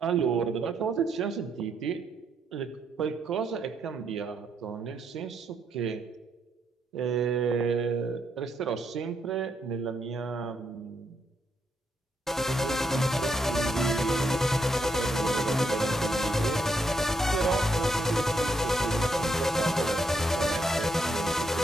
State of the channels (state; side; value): normal; both; correlation 0.77